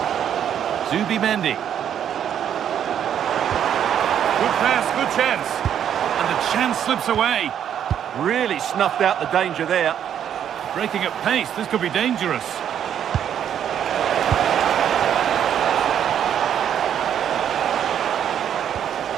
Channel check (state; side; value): quieter; left; 9.4 dB